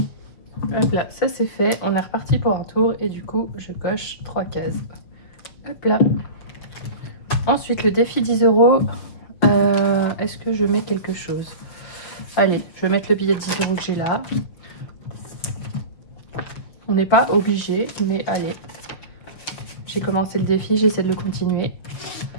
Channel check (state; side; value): late; right; 6.3 ms